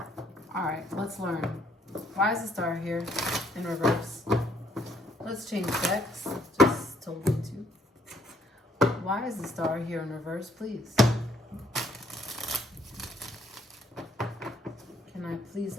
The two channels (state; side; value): normal; both; correlation 0.67